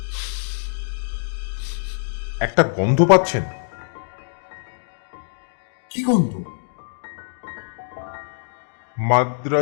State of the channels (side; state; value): right; silent; 61 dB below the other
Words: একটা গন্ধ পাচ্ছেন? কি গন্ধ?